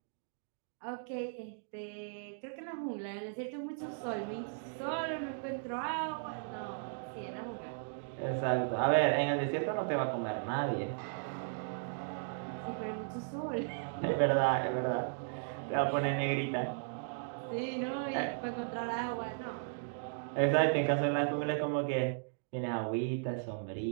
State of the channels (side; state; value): left; silent; digital silence